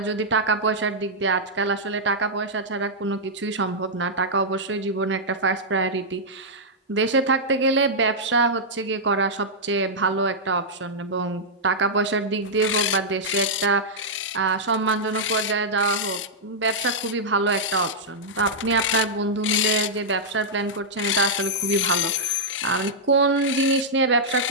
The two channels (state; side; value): normal; both; correlation -0.08